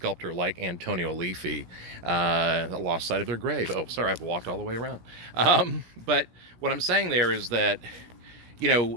like Antonio Aliffi. Lost sight of their grave. Oh, sorry, I've walked all the way around. But what I'm saying there is that, the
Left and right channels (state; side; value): late; left; 17 ms